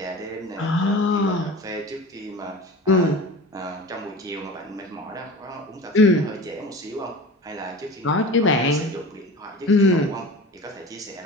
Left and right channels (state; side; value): normal; both; correlation 0.35